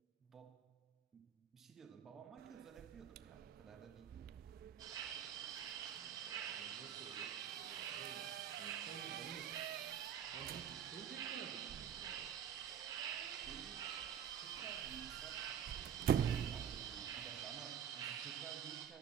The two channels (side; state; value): left; quieter; 8.8 dB